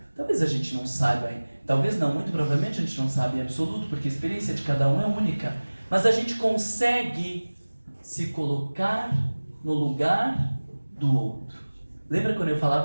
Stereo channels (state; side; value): inverted; both; correlation -1.00